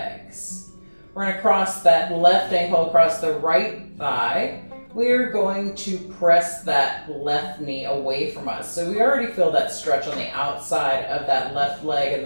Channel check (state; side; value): inverted; both; correlation -1.00